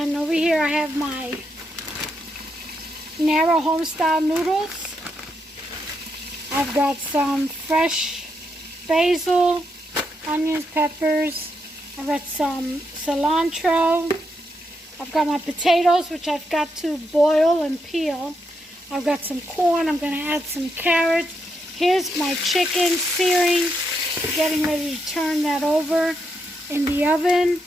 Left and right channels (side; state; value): both; normal; correlation 0.81